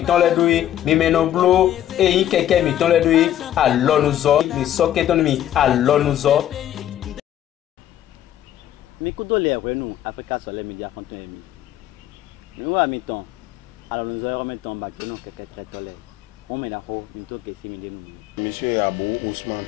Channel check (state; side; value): quieter; right; 11.8 dB